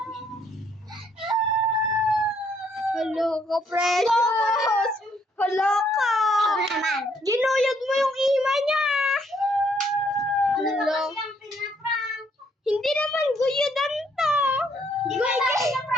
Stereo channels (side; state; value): both; normal; correlation 0.69